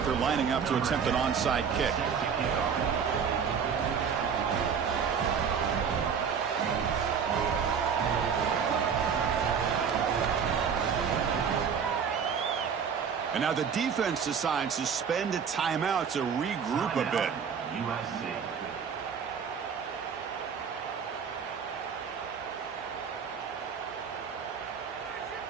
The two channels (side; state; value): left; quieter; 6.8 dB